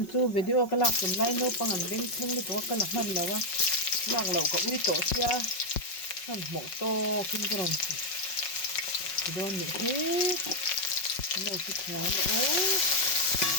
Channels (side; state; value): right; late; 5.4 ms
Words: chú video cái lạc cầm lại nô bằng ảnh bên thung đi có cái lạc hẳn là wa lạc lẩu có uy tổ xia hẳn mỏ to kinh cái rồi cái đó nữa thế cái đầu thịt khá nữa